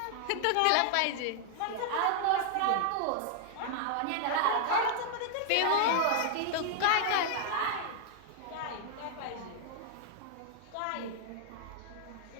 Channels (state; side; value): different; both; correlation 0.00